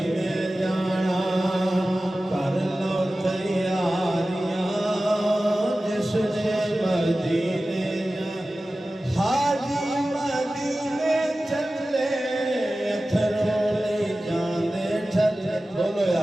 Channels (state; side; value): normal; both; correlation 0.96